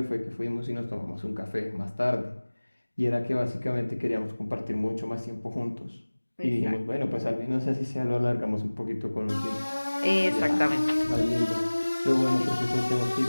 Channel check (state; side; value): inverted; both; correlation -1.00